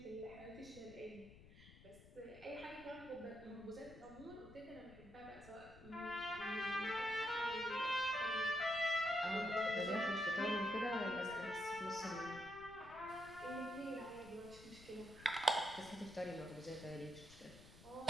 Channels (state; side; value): noise; left; rumble, 19 dB below the sound